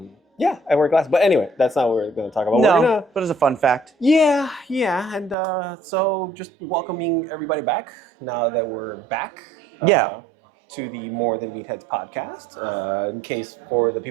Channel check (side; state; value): left; drops out; at 5.4 s